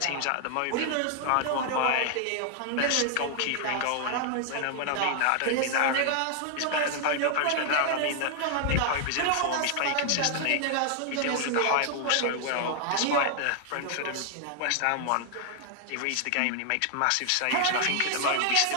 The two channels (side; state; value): both; different; correlation 0.00